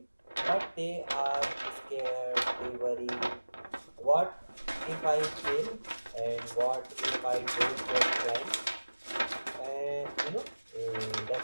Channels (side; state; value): both; inverted; correlation -1.00